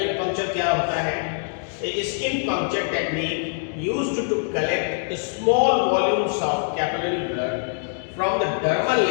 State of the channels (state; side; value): silent; right; digital silence